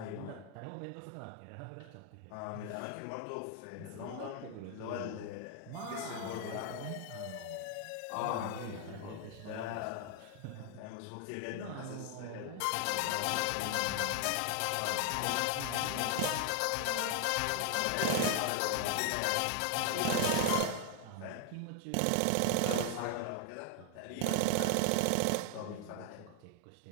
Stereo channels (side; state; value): both; different; correlation 0.00